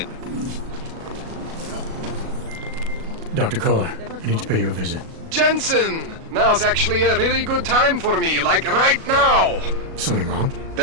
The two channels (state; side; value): late; left; 37 ms